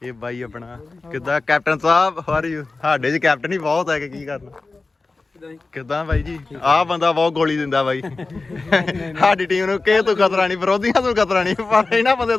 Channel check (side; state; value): right; quieter; 3.6 dB